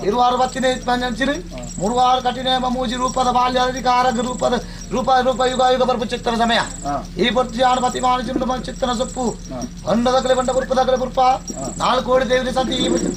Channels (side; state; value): both; identical; correlation 1.00